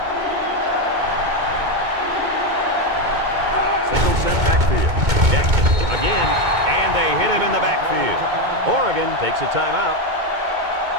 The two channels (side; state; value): left; late; 2.2 ms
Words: Single set backfield. Jackson again. And they hit him in the backfield. Oregon takes a timeout.